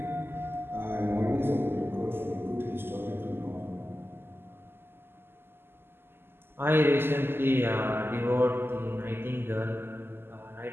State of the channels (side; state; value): left; late; 0.11 ms